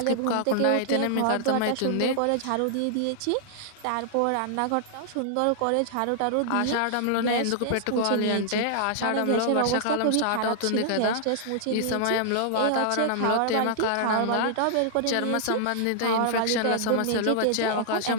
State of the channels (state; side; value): different; both; correlation -0.01